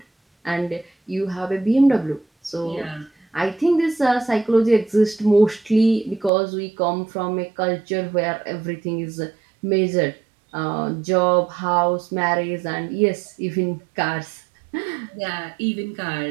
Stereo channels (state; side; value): drops out; left; at 6.3 s